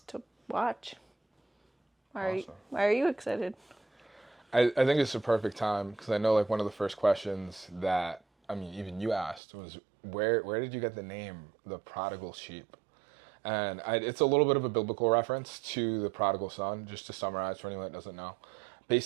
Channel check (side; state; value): left; drops out; at 9.4 s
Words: to watch. Why are you excited? I think it's a perfect time because I know like one of the first questions that, I mean, even you asked was, where did you get the name, the Prodigal Sheep? And it's a little bit of a biblical reference to the prodigal son, just to summarize for anyone that doesn't know.